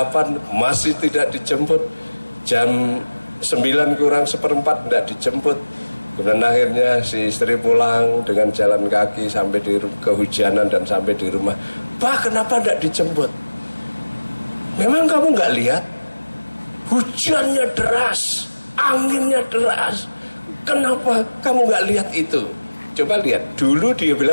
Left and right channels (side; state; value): both; inverted; correlation -1.00